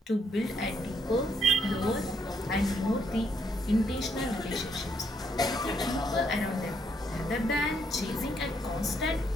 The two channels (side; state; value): both; normal; correlation 0.73